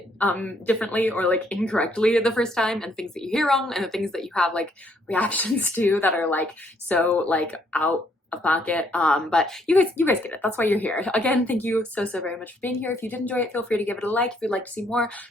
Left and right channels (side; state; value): both; normal; correlation 0.69